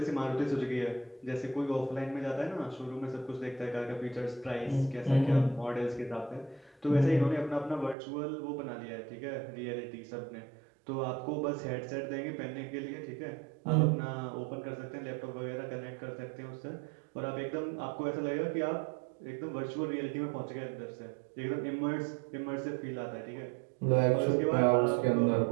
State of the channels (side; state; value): left; drops out; at 8.0 s